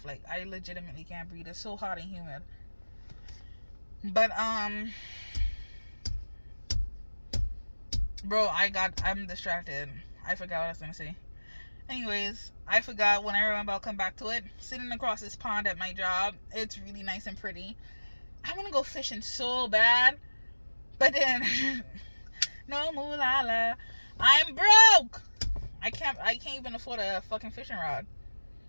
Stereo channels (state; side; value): inverted; both; correlation -1.00